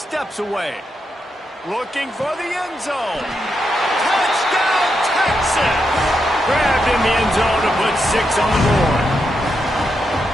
away. Looking for the end zone. Touchdown, Texas! Grabbed in the end zone to put 6 on the board.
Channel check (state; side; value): normal; both; correlation 0.83